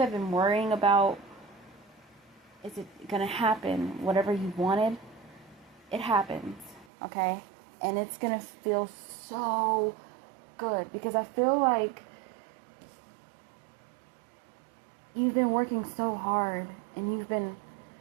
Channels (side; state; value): left; drops out; at 6.9 s